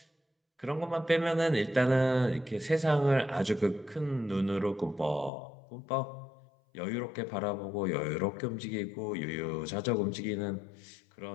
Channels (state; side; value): drops out; right; at 5.3 s